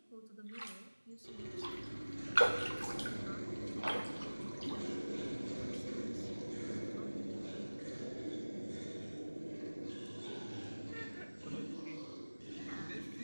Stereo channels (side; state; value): both; inverted; correlation -1.00